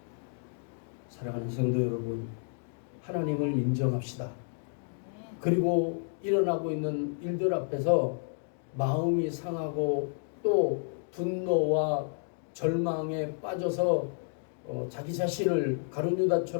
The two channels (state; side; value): silent; right; digital silence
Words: 사랑하는 성도 여러분, 하나님을 인정합시다. 그리고 일어나고 있는 일들 앞에서 마음이 상하고 또 분노와 절망에 빠져서 자기 자신을 가룟